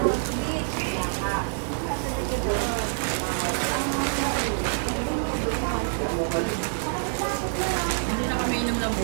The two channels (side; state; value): left; silent; 60 dB below the other